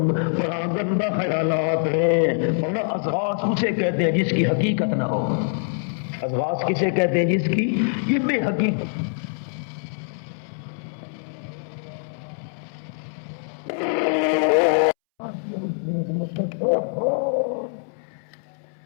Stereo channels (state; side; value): silent; right; 63 dB below the other